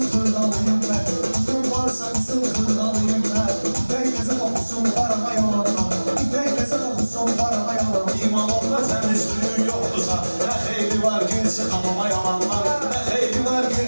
hırdalıyım ben. Gücüm varsa kısım hırdalıyım ben. İpek kokusun parama yalandan. İpek kokusun parama yalandan. İmanımda təmizliği yoktursa, ne xeyri var girsin hamama yalanlar. Ne xeyri var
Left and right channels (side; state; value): both; inverted; correlation -1.00